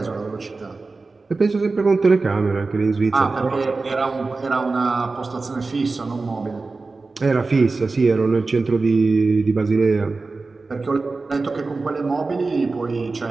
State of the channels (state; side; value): quieter; left; 3.8 dB